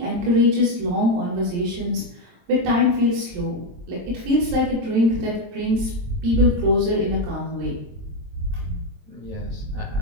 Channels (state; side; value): late; left; 22 ms